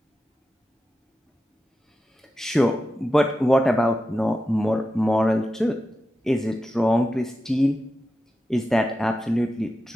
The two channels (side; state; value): both; normal; correlation 0.91